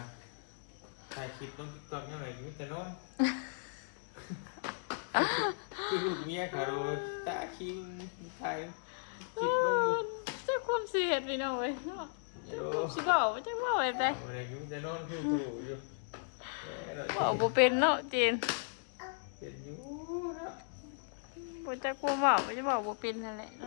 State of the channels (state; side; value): silent; right; digital silence